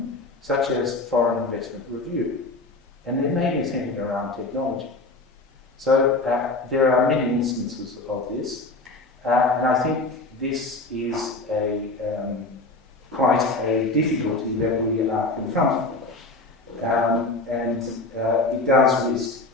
such as foreign investment review. And they're mainly centered around technology. So there are many instances of this, and I think this is quite a difficulty that we are confronting. And it does risk,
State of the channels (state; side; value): quieter; right; 3.2 dB